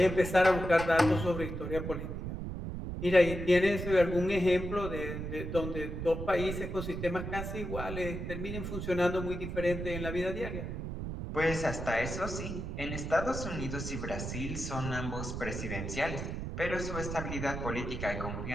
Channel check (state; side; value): noise; right; rumble, 5 dB below the sound